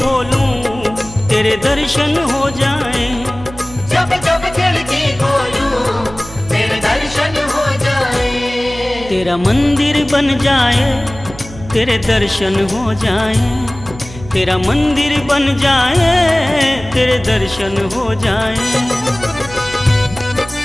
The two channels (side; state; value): right; noise; hum, 16 dB below the sound